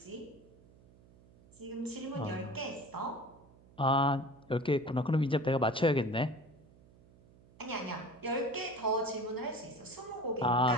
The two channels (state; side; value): noise; right; hum, 26 dB below the sound